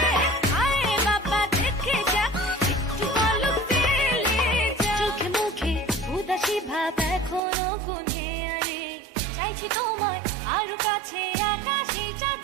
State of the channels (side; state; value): left; drops out; at 7.4 s